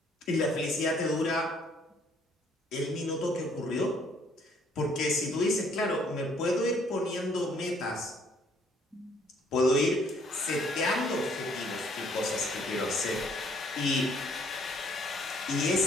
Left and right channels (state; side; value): normal; both; correlation 0.63